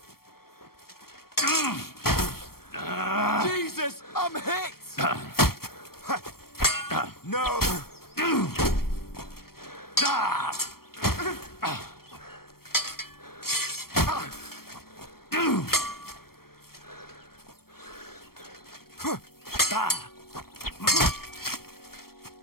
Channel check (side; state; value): right; late; 0.94 ms